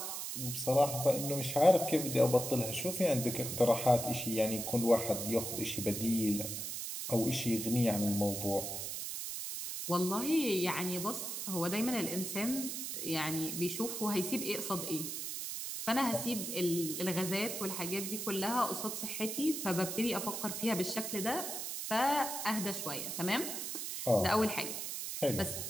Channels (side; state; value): right; noise; hiss, 5 dB below the sound